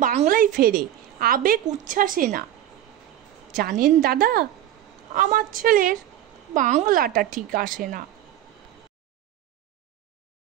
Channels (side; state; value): left; quieter; 12.2 dB